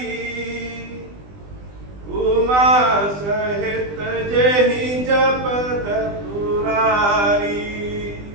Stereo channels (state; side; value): late; left; 20 ms